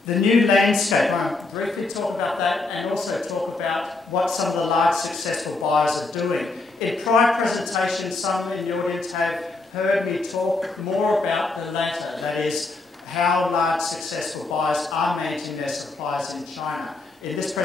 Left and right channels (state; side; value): quieter; right; 3.4 dB